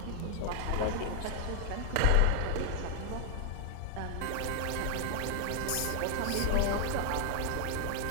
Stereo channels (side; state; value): both; different; correlation 0.00